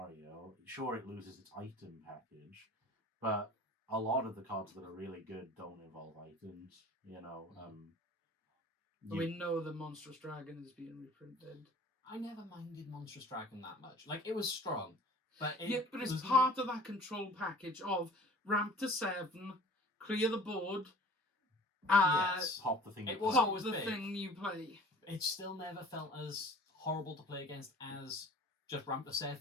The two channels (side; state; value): both; normal; correlation 0.46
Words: sure it loses its item package, but a lot of the cards that are really good don't involve items. We know the Monstrous Dragon is being reprinted. I never minded Monstrous Dragon that much. Like, it was strong. But it's part of that control package of ramp to 7, clear the board, yes, pop the thing. It was always the big. thing you play. It still never felt as horrible to play against as just ramp to